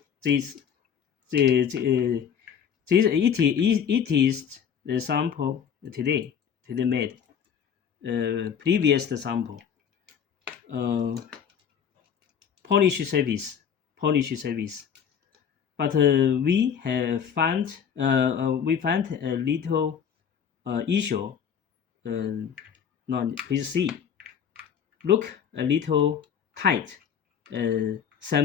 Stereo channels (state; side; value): quieter; right; 7.8 dB